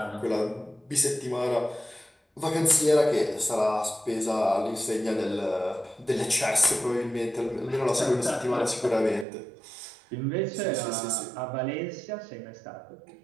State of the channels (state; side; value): drops out; left; at 9.2 s